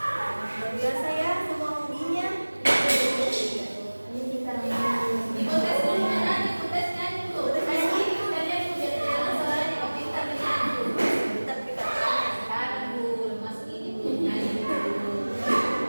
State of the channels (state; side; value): inverted; both; correlation -1.00